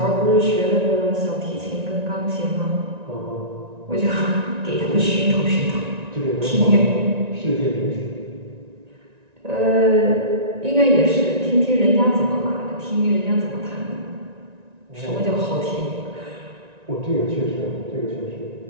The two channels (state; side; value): late; left; 1.9 ms